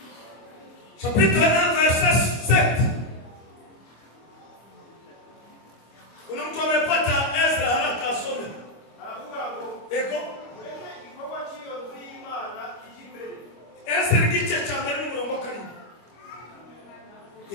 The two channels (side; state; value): right; late; 25 ms